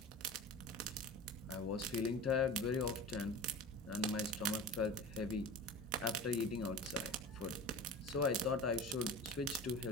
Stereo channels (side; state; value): both; normal; correlation 0.33